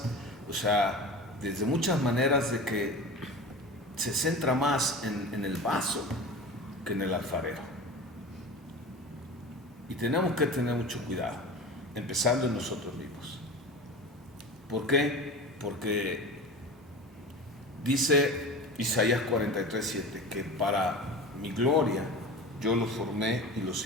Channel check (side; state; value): both; normal; correlation 0.32